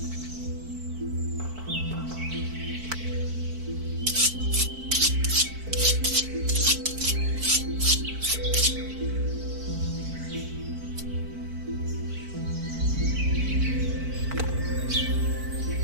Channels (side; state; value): left; late; 4.5 ms